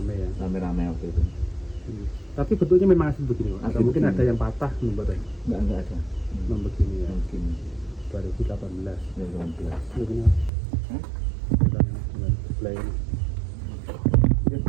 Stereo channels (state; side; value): drops out; left; at 10.5 s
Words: ya. Rame-rame waktu itu. Tapi bentuknya memang asli begini Pak. Atau Asli mungkin begini. ada yang patah membuatnya. Enggak ada. Memang begini ya. Mungkin 2018. 2018. Begini. Hah? Dengan sebelah ini. Ini